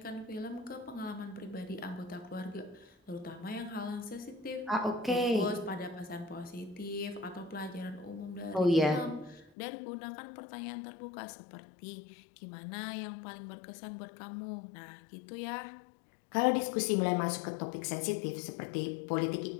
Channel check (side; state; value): right; drops out; at 9.5 s